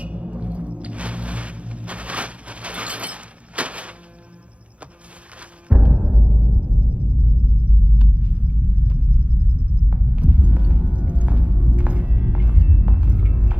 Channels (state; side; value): late; left; 0.062 ms